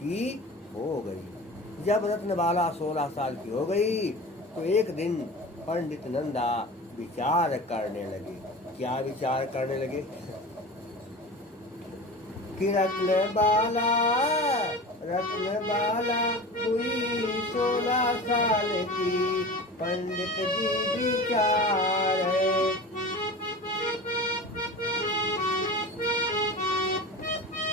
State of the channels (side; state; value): both; normal; correlation 0.34